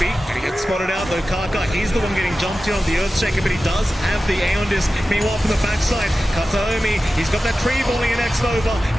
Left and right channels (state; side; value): normal; both; correlation 0.94